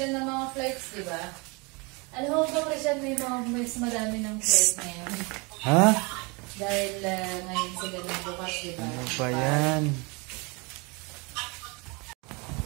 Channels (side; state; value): left; quieter; 28.8 dB